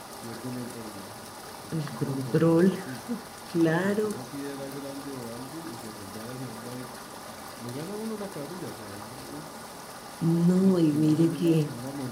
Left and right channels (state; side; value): identical; both; correlation 1.00